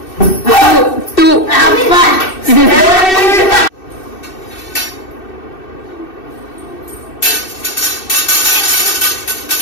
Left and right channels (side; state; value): right; late; 2.6 ms